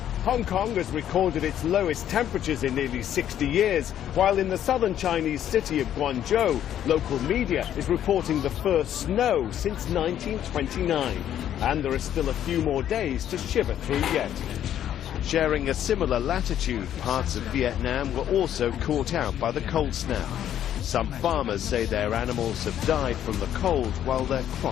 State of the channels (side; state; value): right; quieter; 10.7 dB